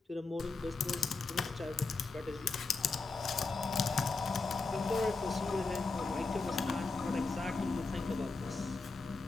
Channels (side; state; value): right; quieter; 3.9 dB